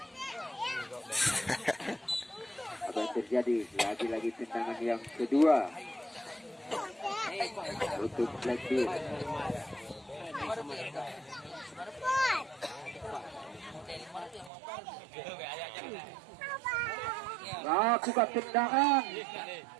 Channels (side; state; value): left; drops out; at 14.5 s